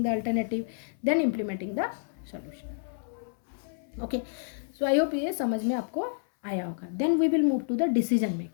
the alternative, then implementing the solution. Okay, so I hope ये समझ में आपको आया होगा। Then we will move to the decision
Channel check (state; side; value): silent; right; 58 dB below the other